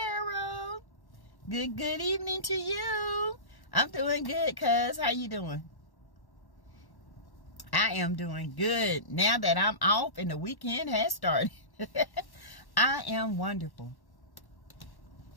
Good evening to you. I'm doing good, cuz. How you doing? I am doing good. Now that I'm off and the weekend has started. I am wonderful.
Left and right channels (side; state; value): right; late; 1.1 ms